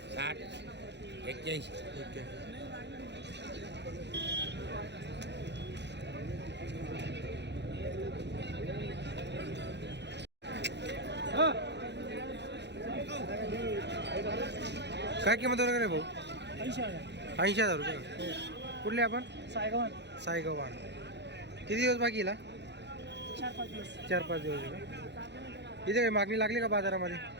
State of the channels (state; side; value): late; left; 0.50 ms